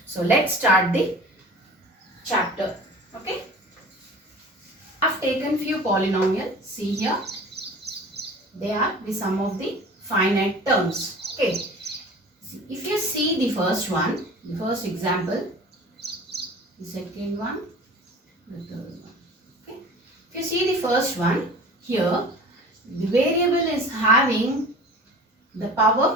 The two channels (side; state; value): both; normal; correlation 0.41